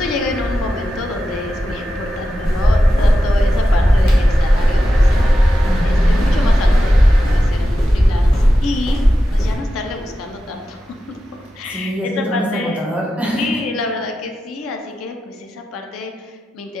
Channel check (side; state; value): both; normal; correlation 0.91